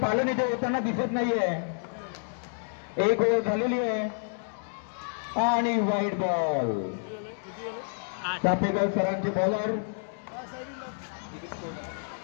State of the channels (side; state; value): right; silent; digital silence